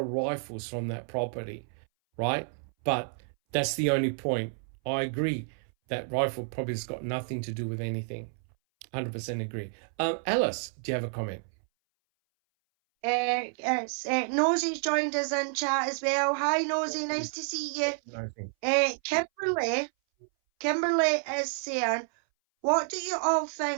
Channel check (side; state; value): left; silent; 58 dB below the other